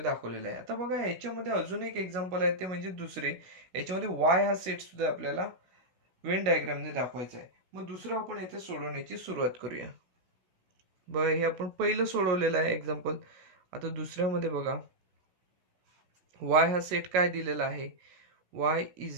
दाखवलेला आहे. आता बघा याच्यामध्ये अजून एक एक्झाम्पल आहे, ते म्हणजे दुसरे. याच्यामध्ये वाय हा सेट सुद्धा आपल्याला वेन डायग्रामने दाखवायचा आहे. मग दुसरं आपण इथे सोडवण्याची सुरुवात करूया. बघा हे आपण पहिलं सोडवलेलं आहे एक्झाम्पल. आता दुसऱ्यामध्ये बघा, वाय हा सेट काय दिलेला आहे, y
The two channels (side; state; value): left; late; 16 ms